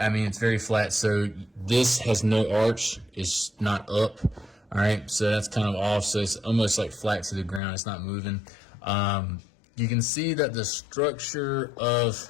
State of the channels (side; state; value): right; drops out; at 7.6 s